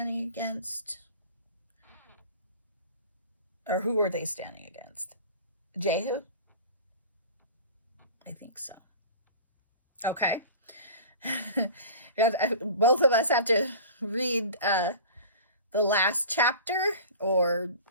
against? Or who are they standing against? Jehu? I think so. Okay. Both of us have to read the last chapter, or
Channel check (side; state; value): both; inverted; correlation -0.39